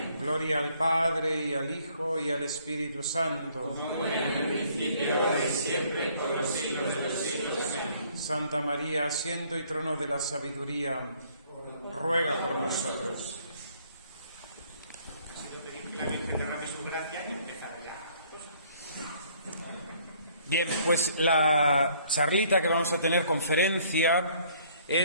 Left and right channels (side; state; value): both; inverted; correlation -0.62